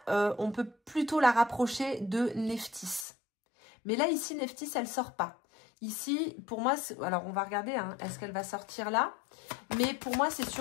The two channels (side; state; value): right; drops out; at 3.1 s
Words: on peut plutôt la rapprocher de Nephthys. Mais là, ici, Nephthys, elle ne sort pas. Ici, pour moi, alors on va regarder, hein, est-ce qu'elle va sortir là? Mais pour moi, c'est